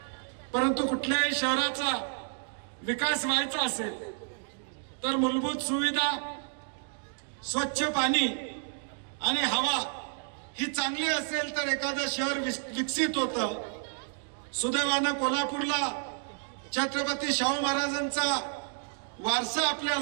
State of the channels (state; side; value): silent; left; digital silence